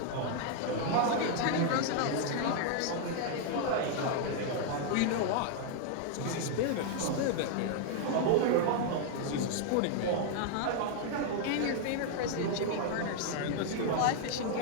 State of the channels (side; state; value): both; different; correlation 0.00